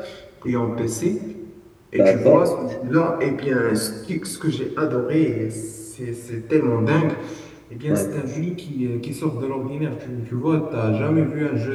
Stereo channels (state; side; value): identical; both; correlation 1.00